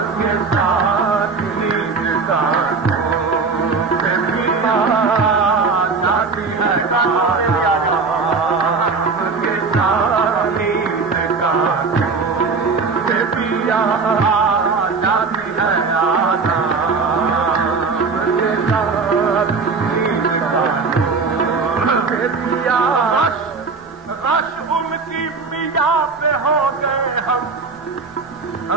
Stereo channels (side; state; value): left; quieter; 4.6 dB